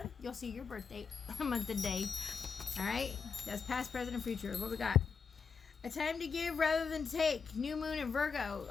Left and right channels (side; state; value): right; quieter; 5.8 dB